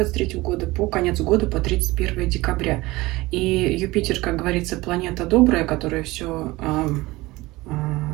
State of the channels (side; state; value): left; quieter; 20.4 dB